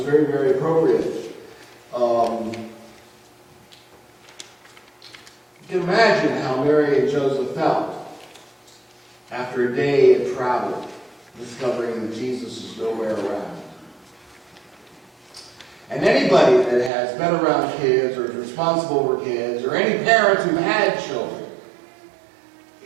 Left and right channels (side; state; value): left; drops out; at 16.9 s